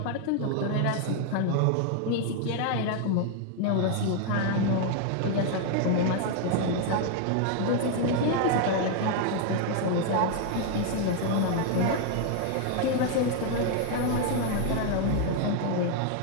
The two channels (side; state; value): both; different; correlation 0.00